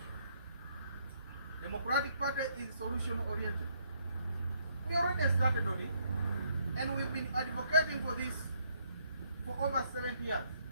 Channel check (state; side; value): inverted; both; correlation -0.70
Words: Democratic Party is solution-oriented. We already started on it, and we've been advocating for this for over 70 years.